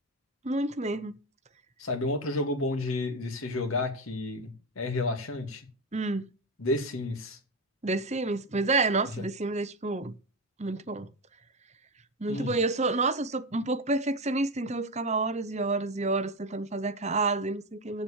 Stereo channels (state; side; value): normal; both; correlation 0.16